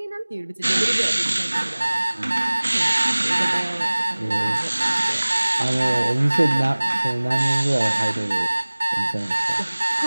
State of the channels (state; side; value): inverted; both; correlation -1.00